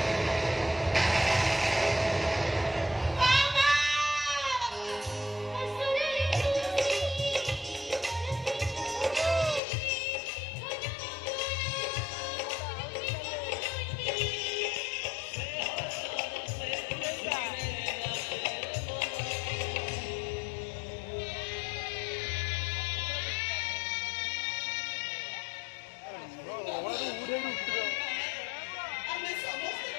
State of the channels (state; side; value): drops out; right; at 9.6 s